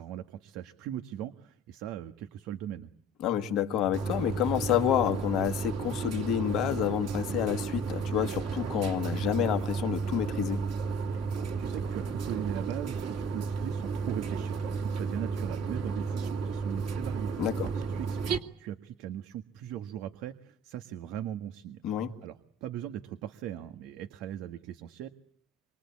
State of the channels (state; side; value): normal; both; correlation 0.47